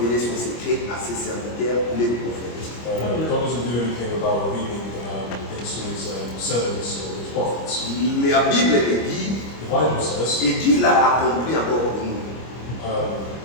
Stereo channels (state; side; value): late; right; 25 ms